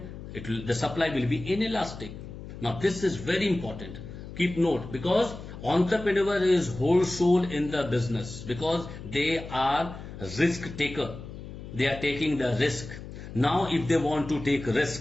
The supply will be inelastic. Now this is very important. Keep note, because entrepreneur is whole soul in the business, because they are risk taker. They are taking the risk. Now if they want to take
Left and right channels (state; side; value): noise; left; hum, 12 dB below the sound